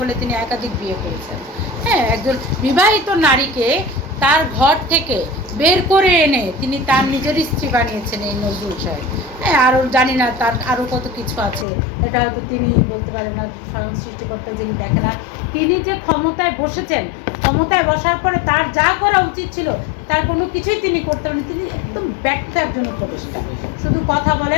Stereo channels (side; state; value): right; drops out; at 11.7 s